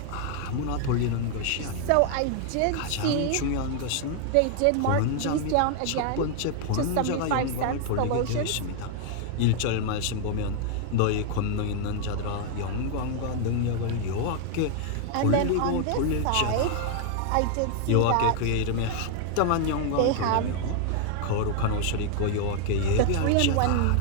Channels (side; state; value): both; different; correlation 0.00